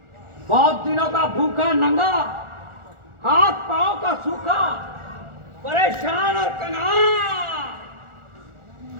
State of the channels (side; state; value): left; late; 1.4 ms